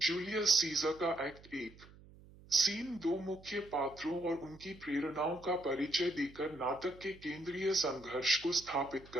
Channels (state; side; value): noise; right; hum, 22 dB below the sound